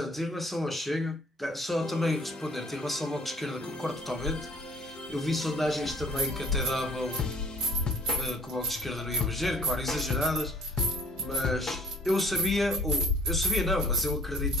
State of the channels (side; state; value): both; normal; correlation 0.55